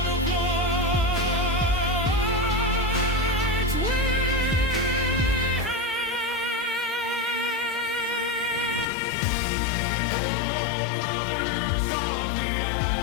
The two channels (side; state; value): right; drops out; at 8.8 s